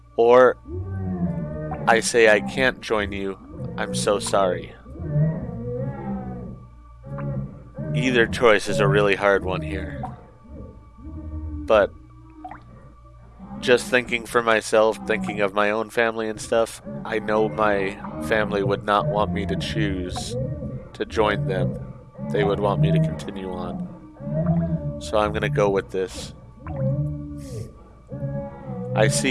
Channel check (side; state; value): both; identical; correlation 1.00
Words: Or I say I can't join you, I'm so sorry. Either choice is a really hard one here. But just thinking for myself, thinking of my own family and stuff, I know my family would not want me to choose to join them. They would want me to continue on. So I'm gonna go with this. I